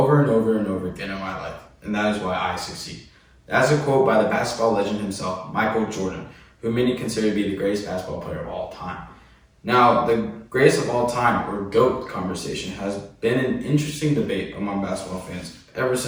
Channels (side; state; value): both; identical; correlation 1.00